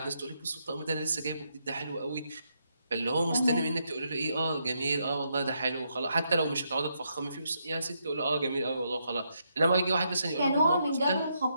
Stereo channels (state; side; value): inverted; both; correlation -0.79